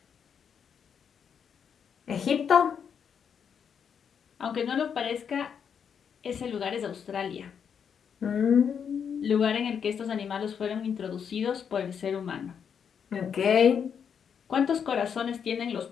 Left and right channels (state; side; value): quieter; right; 7.4 dB